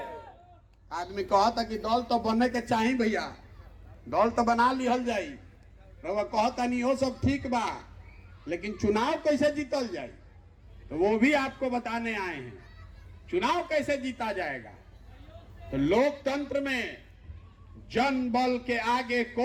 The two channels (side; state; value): both; identical; correlation 1.00